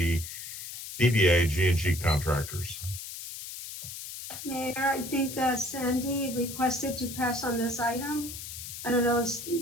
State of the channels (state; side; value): noise; left; hiss, 9 dB below the sound